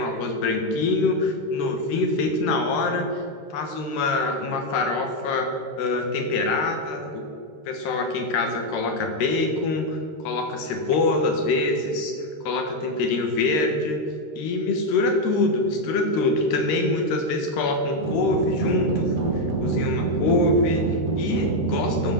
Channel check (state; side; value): late; right; 13 ms